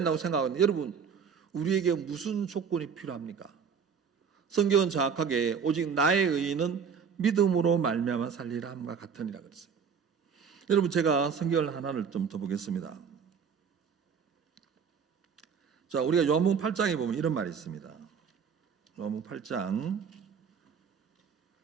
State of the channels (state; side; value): quieter; left; 6.6 dB